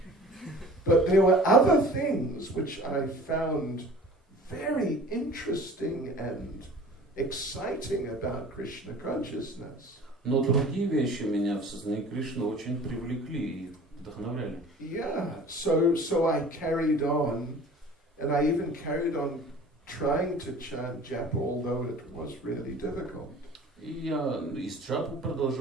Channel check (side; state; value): both; normal; correlation 0.45